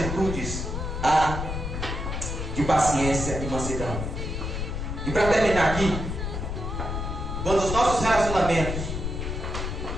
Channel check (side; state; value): left; noise; rumble, 4 dB below the sound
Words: de paciência e mansidão. E para terminar aqui, quando os nossos relacionamentos